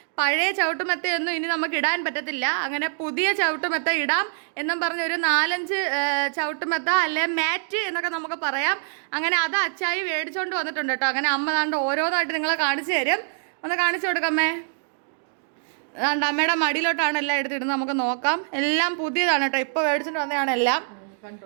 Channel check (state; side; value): silent; left; digital silence